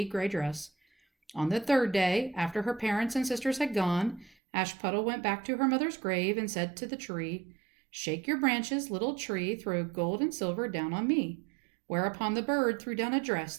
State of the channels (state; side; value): drops out; left; at 4.4 s